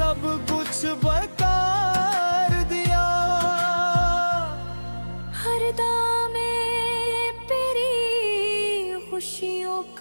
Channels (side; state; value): both; inverted; correlation -1.00